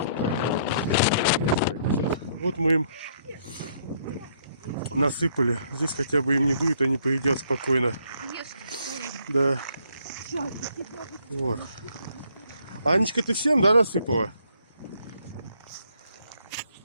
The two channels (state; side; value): inverted; both; correlation -0.68